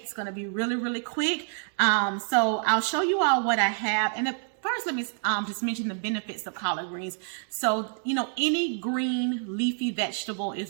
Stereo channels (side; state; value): left; silent; 60 dB below the other